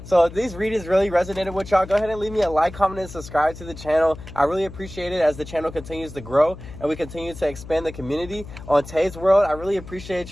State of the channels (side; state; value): left; noise; hum, 14 dB below the sound